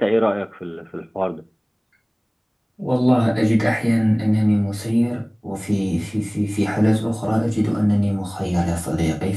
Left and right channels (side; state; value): both; identical; correlation 1.00